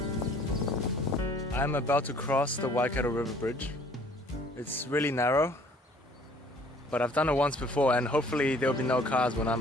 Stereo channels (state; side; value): normal; both; correlation 0.56